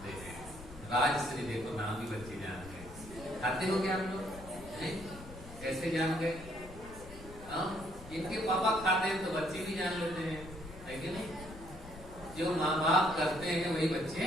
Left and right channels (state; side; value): noise; left; rumble, 15 dB below the sound